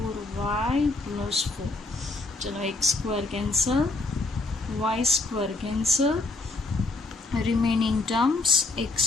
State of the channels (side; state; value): right; quieter; 3.3 dB